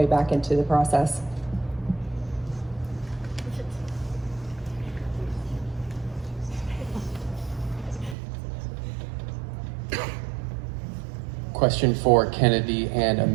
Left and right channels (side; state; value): left; drops out; at 8.2 s